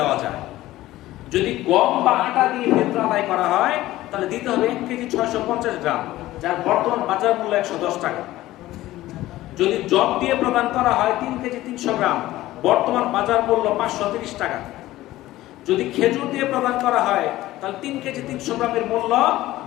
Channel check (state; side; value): quieter; right; 16.1 dB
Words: যায়। যদি গম বা আটা দিয়ে ফিতরা আদায় করা হয় তাহলে দিতে হবে 1 কেজি 650 গ্রাম, যার বর্তমান বাজার মূল্য 110 টাকা। যদি জব দিয়ে প্রদান করা হয় 3 কেজি 300 গ্রাম, বর্তমান বাজার মূল্য 530 টাকা। যদি খেজুর দিয়ে প্রদান করা হয় তাহলে 3 কেজি 300 গ্রামের মূল্য